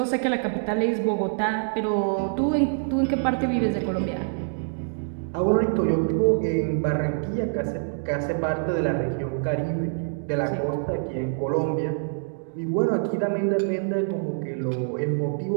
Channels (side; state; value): left; silent; digital silence